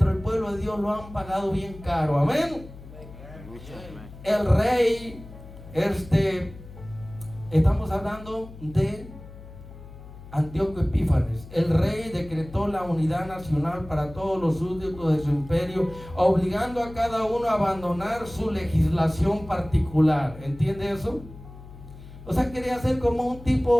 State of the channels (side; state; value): left; noise; hum, 17 dB below the sound